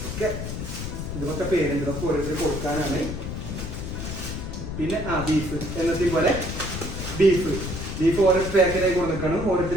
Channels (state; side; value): noise; left; rumble, 5 dB below the sound